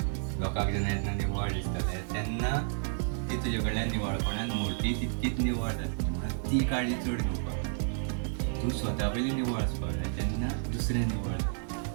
लोकांक जेन्ना निवळ दिसतलें तेन्ना ती तुजे कडल्यान निवळपणान मूर्ती तितकीच निवळ जातली. म्हणून ती काळजी चड घेवपाक. तूं स्वता पयलीं निवळ आसपाक जाय तेन्ना दुसरें निवळ जाता.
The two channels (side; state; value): left; silent; digital silence